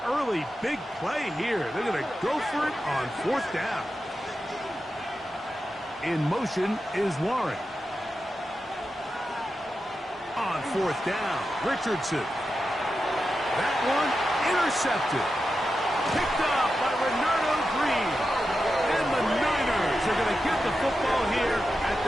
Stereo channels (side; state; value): both; normal; correlation 0.90